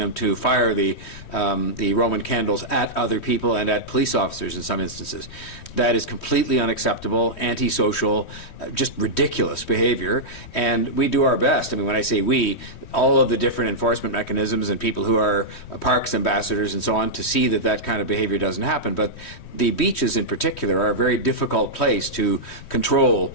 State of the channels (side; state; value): right; late; 3.1 ms